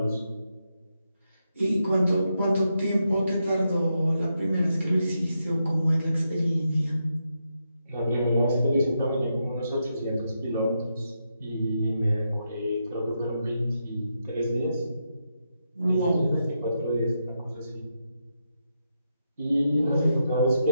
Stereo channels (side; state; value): both; inverted; correlation -0.84